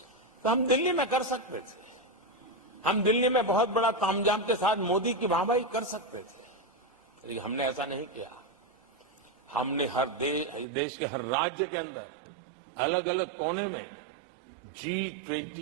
तो हम दिल्ली में कर सकते थे, हम दिल्ली में बहुत बड़ा तामझाम के साथ मोदी की वाहवाही कर सकते थे, लेकिन हमने ऐसा नहीं किया। हमने हर देश के हर राज्य के अंदर अलग अलग कोने में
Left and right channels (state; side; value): drops out; left; at 10.7 s